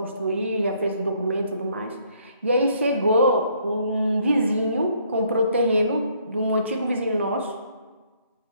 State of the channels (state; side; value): inverted; both; correlation -0.66